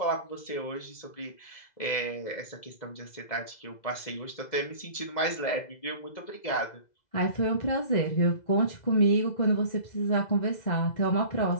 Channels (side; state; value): right; late; 2.0 ms